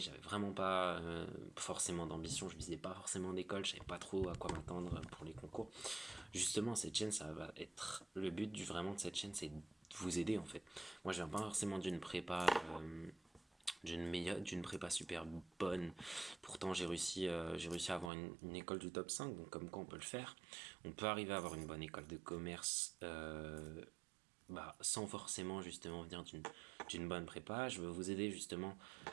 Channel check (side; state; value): left; drops out; at 18.1 s